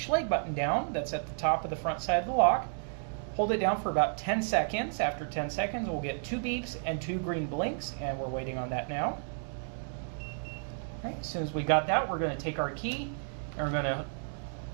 button down that's at the top of the front side of the lock. Hold it down for about 10 seconds. After 10 seconds, we'll get 2 beeps and 2 green blinks, and we're waiting on that now. All right, as soon as we got that, we're going to take our key and we're going to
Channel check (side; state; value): left; silent; digital silence